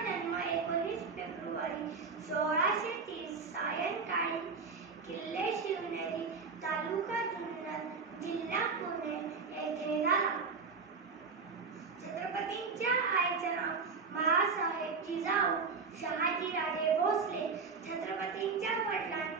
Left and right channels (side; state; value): left; quieter; 4.9 dB